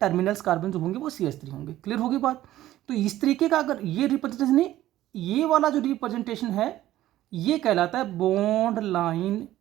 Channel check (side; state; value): left; quieter; 14.3 dB